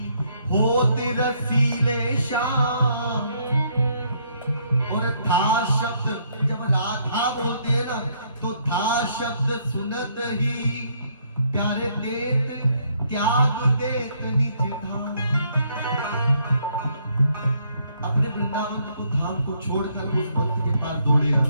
होते रसीले श्याम। और था शब्द जब राधा बोलते हैं ना, तो था शब्द सुनत ही प्यारे देत त्याग देत निज धाम। अपने वृंदावन को धाम को छोड़कर उस भक्त के पास दौड़े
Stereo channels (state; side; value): inverted; both; correlation -0.70